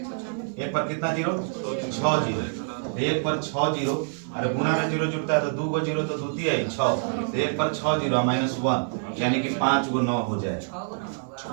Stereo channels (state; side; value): silent; left; 60 dB below the other